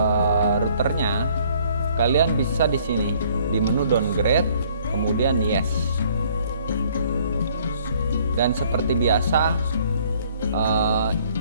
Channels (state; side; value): inverted; both; correlation -0.60